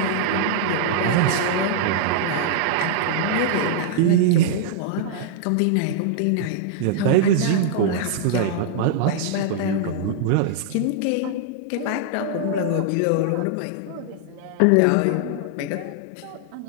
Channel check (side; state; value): both; different; correlation -0.01